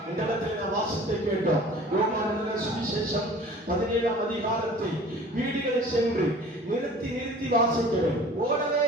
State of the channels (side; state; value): both; normal; correlation 0.45